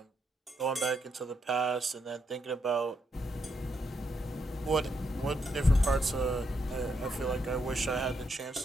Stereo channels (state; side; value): normal; both; correlation 0.79